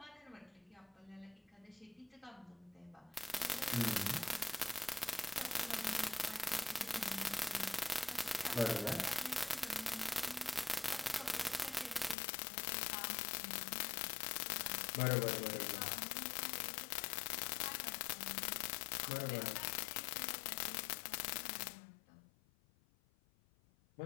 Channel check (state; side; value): drops out; right; at 12.2 s